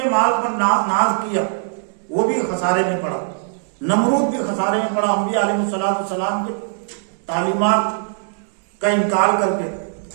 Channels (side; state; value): left; silent; digital silence